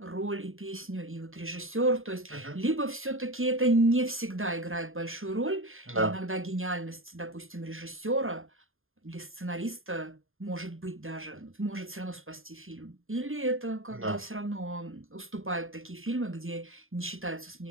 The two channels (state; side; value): late; left; 0.60 ms